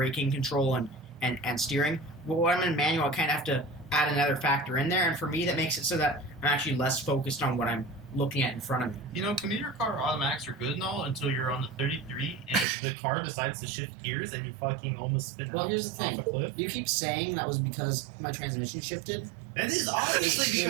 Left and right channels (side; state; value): left; drops out; at 12.7 s